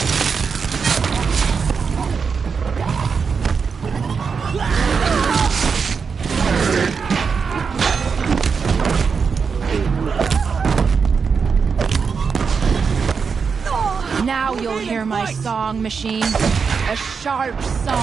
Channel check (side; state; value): left; quieter; 5.7 dB